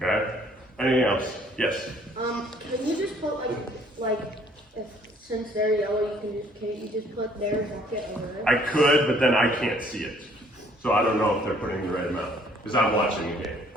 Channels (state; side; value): normal; both; correlation 0.60